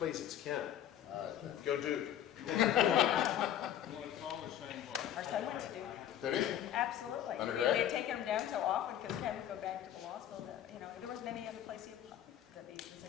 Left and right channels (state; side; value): quieter; right; 10.7 dB